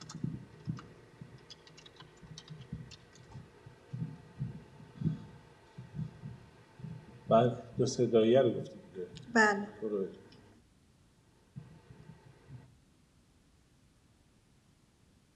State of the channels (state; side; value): identical; both; correlation 1.00